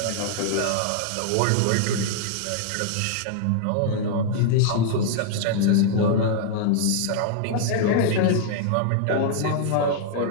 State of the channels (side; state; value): both; different; correlation -0.01